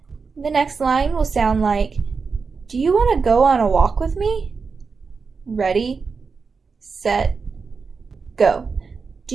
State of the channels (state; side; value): quieter; left; 5.0 dB